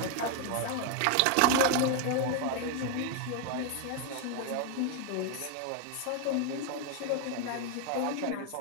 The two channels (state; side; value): different; both; correlation 0.01